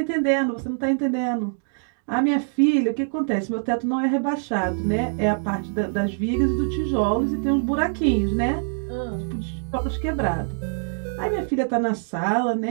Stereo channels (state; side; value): silent; left; digital silence